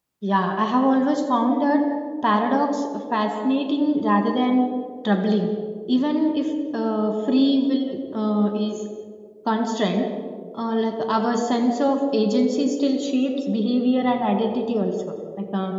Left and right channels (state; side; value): identical; both; correlation 1.00